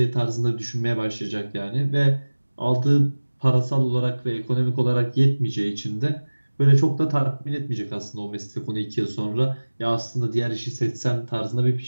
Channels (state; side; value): inverted; both; correlation -1.00